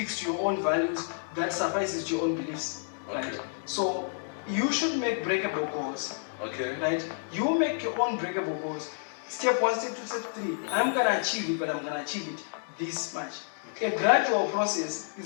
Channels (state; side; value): silent; right; digital silence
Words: to your own values, that suffices to your own beliefs. Right. Okay. So you should make breakable goals. Okay. Right? You make your own breakable goals. Step 1, step 2, step 3. I'm gonna achieve it, but I'm gonna achieve it this much. A gradual process